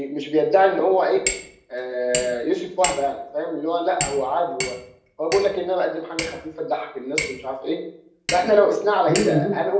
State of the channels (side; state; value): both; identical; correlation 1.00